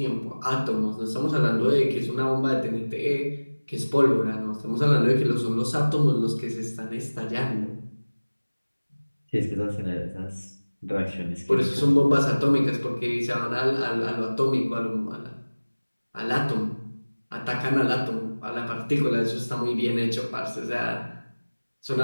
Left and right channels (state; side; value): inverted; both; correlation -1.00